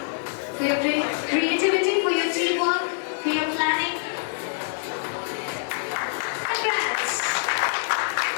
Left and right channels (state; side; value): silent; right; digital silence